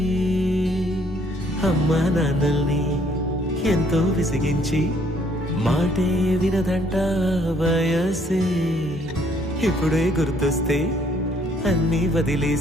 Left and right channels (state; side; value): normal; both; correlation 0.65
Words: అమ్మా నాన్నల్ని ఎంతో విసిగించి మాటే వినదంట వయసే ఇప్పుడే గుర్తొస్తే అన్నీ